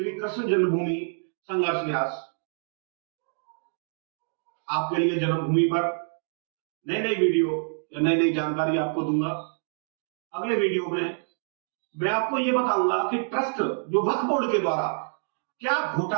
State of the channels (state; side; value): silent; left; digital silence